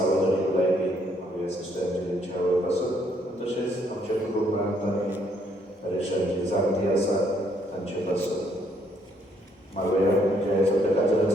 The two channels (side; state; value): both; normal; correlation 0.69